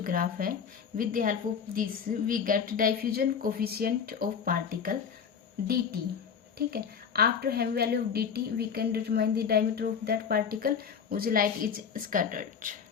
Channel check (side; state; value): right; quieter; 7.0 dB